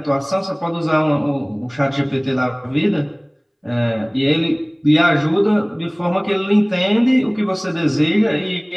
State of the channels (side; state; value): both; identical; correlation 1.00